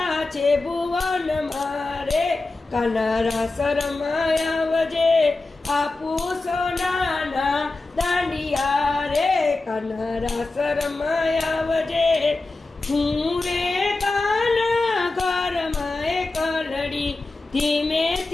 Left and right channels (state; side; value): quieter; right; 3.3 dB